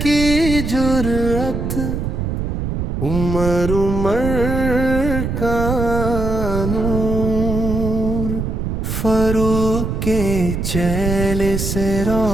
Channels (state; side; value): noise; right; rumble, 2 dB below the sound